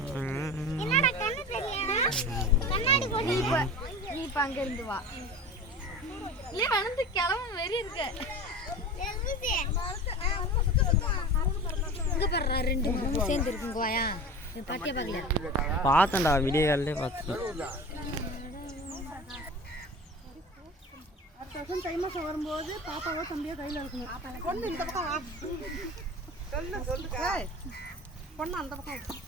நீ இப்ப அங்க இருந்து வா. இல்ல வந்து கிளம்ப வெறி இருக்க. இங்க பாரு ரெண்டு மூணு சேர்ந்து இருக்குங்க வாயா. நீ பாத்தியா பாக்கல? பார்த்தேன்டா வீடியோ கால்லே பார்த்தேன். அடுத்த தை மாசம் வரும்போது பாப்பாவோ தம்பியோ கையில இருக்கணும். பொண்ணு இந்த பக்கம் வா. சொல்லுங்க. பொண்ணு அந்த பக்கம்.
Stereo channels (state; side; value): normal; both; correlation 0.34